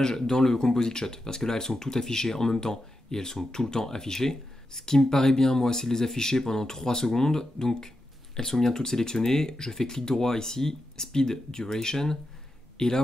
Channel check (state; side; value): normal; both; correlation 0.88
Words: dans le Composite Shot, parce que là elles sont toutes affichées en même temps et elles sont tout le temps affichées. Ce qui me paraît bien moi, c'est de les afficher pendant 3 secondes, donc elles sont bien toutes sélectionnées. Je fais clic droit ici, Speed Duration, et là